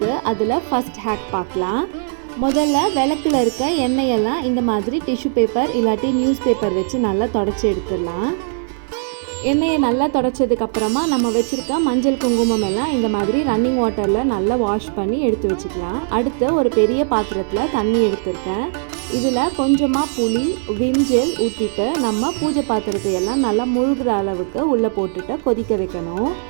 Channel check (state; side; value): silent; left; 64 dB below the other